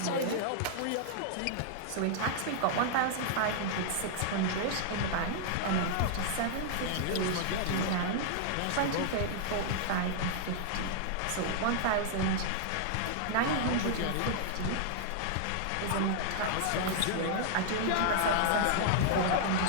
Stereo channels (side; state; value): both; different; correlation -0.01